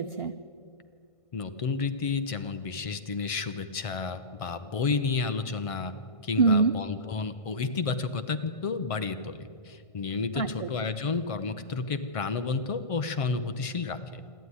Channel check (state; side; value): late; right; 1.5 ms